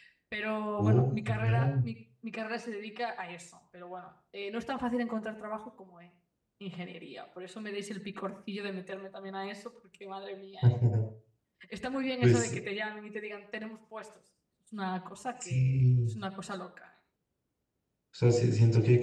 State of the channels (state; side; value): identical; both; correlation 1.00